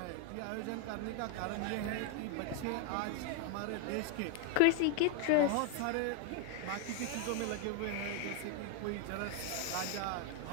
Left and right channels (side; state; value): both; different; correlation 0.00